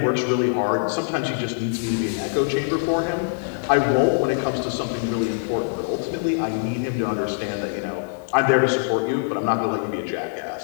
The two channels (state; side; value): silent; right; digital silence